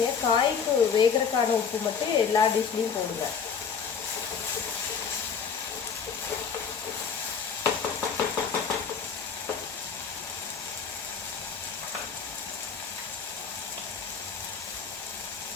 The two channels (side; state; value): right; quieter; 6.4 dB